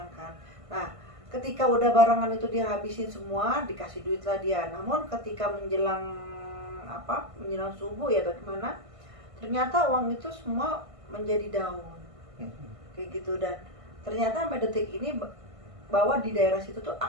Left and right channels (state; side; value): late; left; 1.5 ms